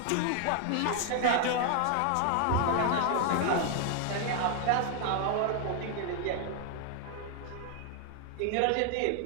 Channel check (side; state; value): both; different; correlation 0.00